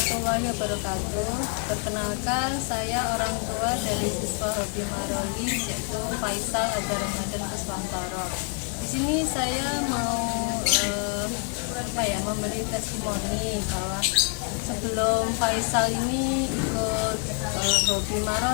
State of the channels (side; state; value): right; quieter; 39.6 dB